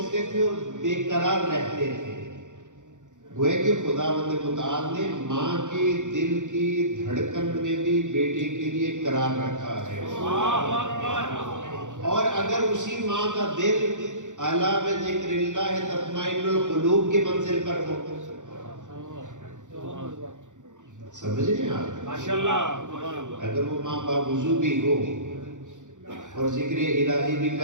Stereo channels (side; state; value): left; late; 0.86 ms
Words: تھے اور بے قرار رہتے تھے۔ گویا کہ خداوند متعال نے ماں کے دل کی دھڑکن میں بھی بیٹے کے لیے قرار رکھا ہے، اور اگر اسی ماں کا دل الا بذکر اللہ تطمئن القلوب کے منزل پر ہو، سمجھ رہے ہیں آپ؟ ماشاءاللہ، اگر وہ ماں باوضو بھی ہو اور ذکر الہی بھی